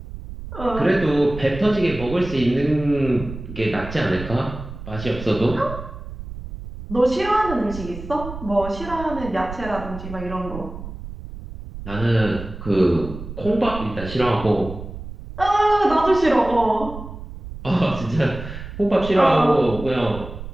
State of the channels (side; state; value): right; noise; rumble, 11 dB below the sound